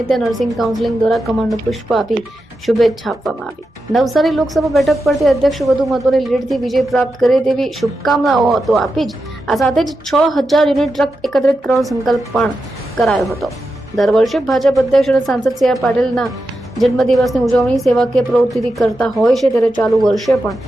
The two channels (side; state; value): both; normal; correlation 0.89